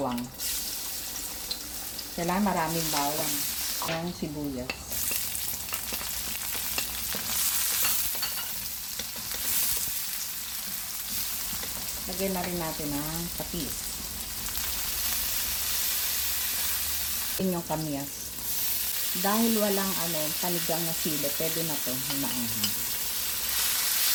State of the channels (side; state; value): both; identical; correlation 1.00